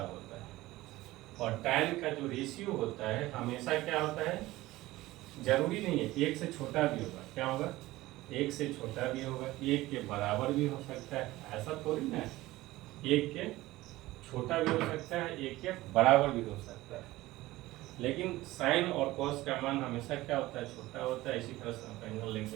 होता है। और tan का जो रेशियो होता है हमेशा क्या होता है, जरूरी नहीं है 1 से छोटा भी होगा, क्या होगा, 1 से छोटा भी होगा, 1 के बराबर भी हो सकता है, ऐसा थोड़ी ना है। 1 के छोटा भी हो सकता है, 1 के बराबर भी हो सकता है। लेकिन साइन और कॉस का मान हमेशा क्या होता है, छोटा होता है। इसी तरह से आप एंगल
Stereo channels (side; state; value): left; quieter; 17.9 dB